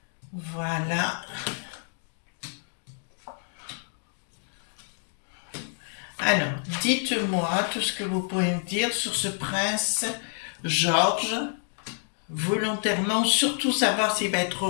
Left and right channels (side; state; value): right; silent; 59 dB below the other